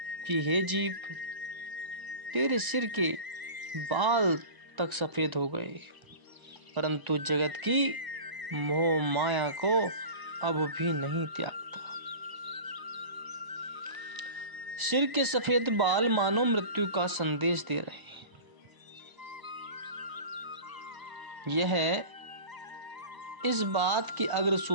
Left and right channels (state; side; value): late; left; 1.0 ms